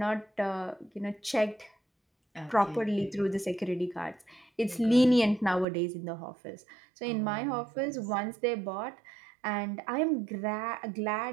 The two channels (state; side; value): drops out; left; at 5.7 s